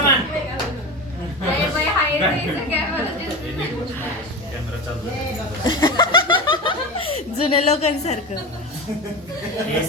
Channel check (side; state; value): both; normal; correlation 0.25